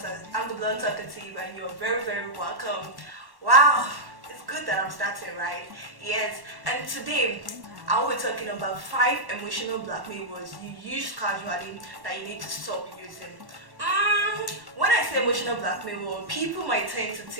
Blunt Talkative, and you're very, very welcome. Wow, it's good that I'm starting, right? Yes, and today I will be talking about 5 emotional blackmail words you use casually that you need to stop using. When I say emotional blackmail word, people might tend to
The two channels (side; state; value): left; late; 1.1 ms